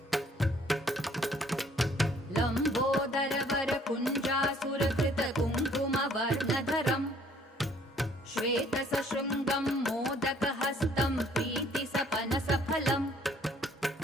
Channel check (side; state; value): both; normal; correlation 0.60